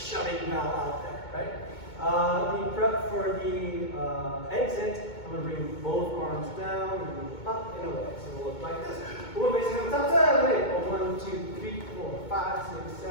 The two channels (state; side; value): late; right; 2.2 ms